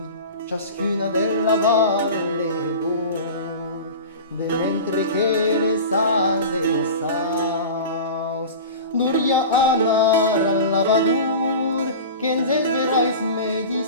ciascuna della valle d'or, de mentre che le salve saus, duria anar al lavadur, che en verais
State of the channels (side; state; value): both; inverted; correlation -0.32